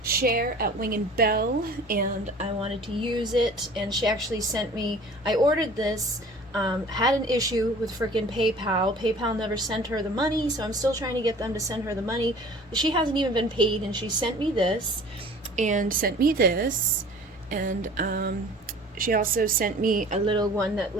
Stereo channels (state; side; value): normal; both; correlation 0.46